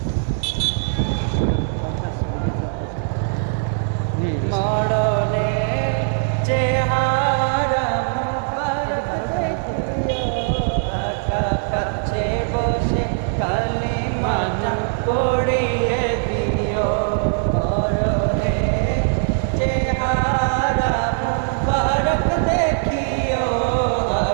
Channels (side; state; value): left; silent; digital silence